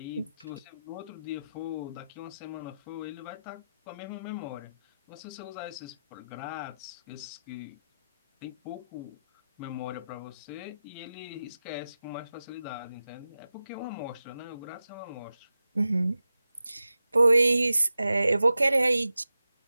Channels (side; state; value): both; inverted; correlation -0.92